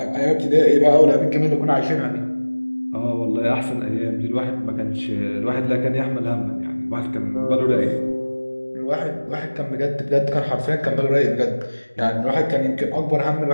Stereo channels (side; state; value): both; inverted; correlation -1.00